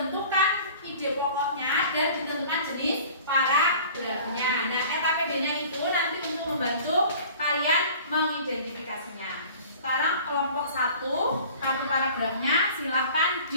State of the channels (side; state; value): both; inverted; correlation -0.45